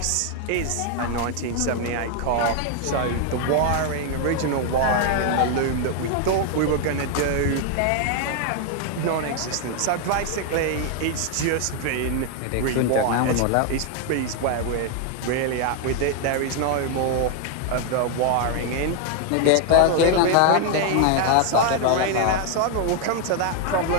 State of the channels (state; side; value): different; both; correlation 0.00